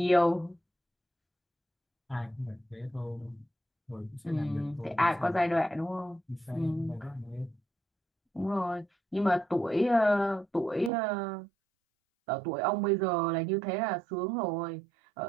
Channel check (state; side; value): drops out; left; at 10.9 s